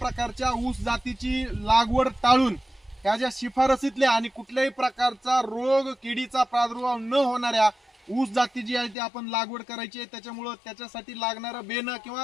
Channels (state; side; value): drops out; right; at 9.0 s